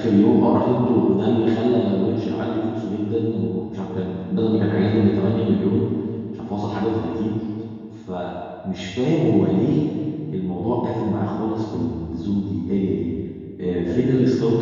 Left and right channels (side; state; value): both; identical; correlation 1.00